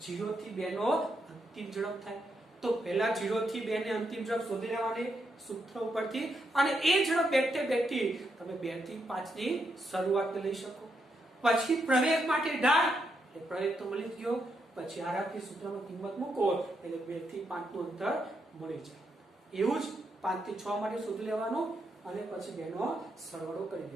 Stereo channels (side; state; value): both; normal; correlation 0.81